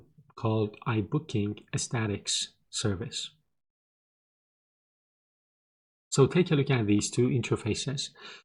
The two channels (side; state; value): both; identical; correlation 1.00